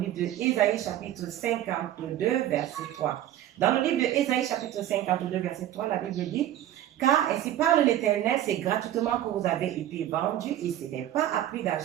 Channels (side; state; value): left; quieter; 12.4 dB